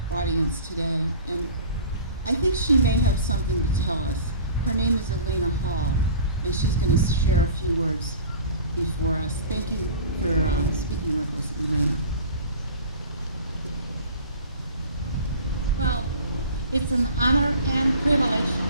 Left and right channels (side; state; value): both; inverted; correlation -0.41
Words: audience today, and I think she may have something to tell us. Her name is Elena Hall, and she's going to share a few words before us. Thank you for speaking with us, Elena. Well, it's an honor and privilege